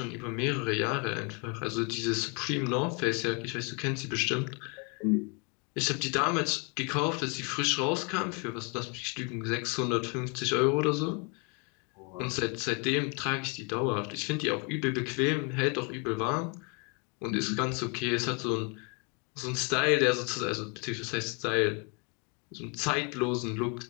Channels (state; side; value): quieter; right; 34.4 dB